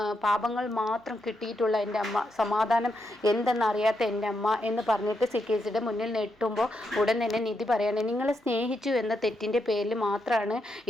പാപങ്ങൾ മാത്രം കിട്ടിയിട്ടുള്ള എൻ്റെ അമ്മ, സമാധാനം എന്തെന്നറിയാത്ത എൻ്റെ അമ്മ എന്ന് പറഞ്ഞിട്ട് CKCയുടെ മുന്നിൽ നെട്ടുമ്പോൾ ഉടൻ തന്നെ നിധി പറയാണ്, നിങ്ങളെ സ്നേഹിച്ചു എന്ന തെറ്റിൻ്റെ പേരിൽ മാത്രമാണ്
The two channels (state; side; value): normal; both; correlation 0.82